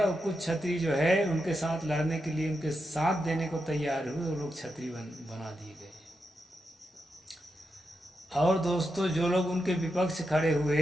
कुछ छत्री जो है उनके साथ लड़ने के लिए उनके साथ देने को तैयार हुए, वो लोग छत्री बना दिए गए। और दोस्तों, जो लोग उनके विपक्ष खड़े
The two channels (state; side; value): normal; both; correlation 0.86